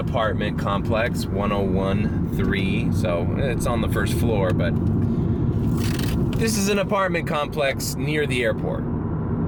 complex, 101-3, so it's on the first floor, but this is an apartment complex near the airport.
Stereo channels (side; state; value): both; identical; correlation 1.00